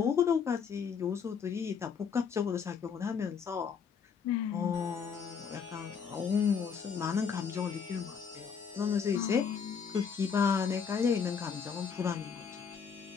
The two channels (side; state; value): right; quieter; 6.5 dB